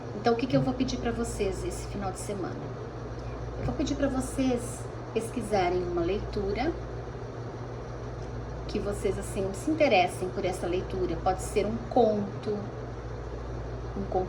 Então, o que eu vou pedir para vocês esse final de semana? Eu vou pedir para vocês pesquisarem uma leitura que vocês, assim, se interessem por essa leitura. Pode ser um conto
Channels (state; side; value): identical; both; correlation 1.00